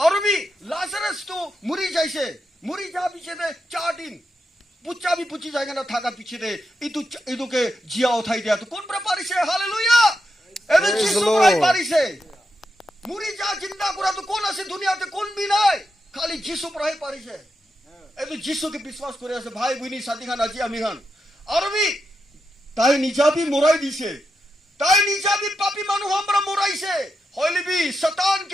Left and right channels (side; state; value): both; normal; correlation 0.86